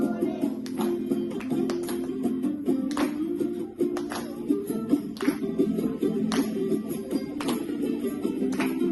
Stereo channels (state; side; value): identical; both; correlation 1.00